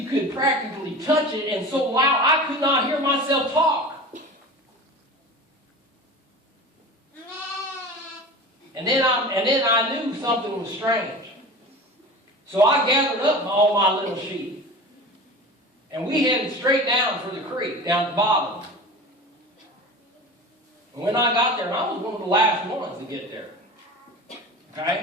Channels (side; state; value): both; normal; correlation 0.34